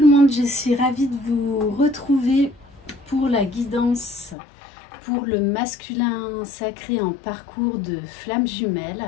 monde, je suis ravie de vous retrouver pour la guidance pour le masculin sacré en parcours de flamme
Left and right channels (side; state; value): right; drops out; at 4.4 s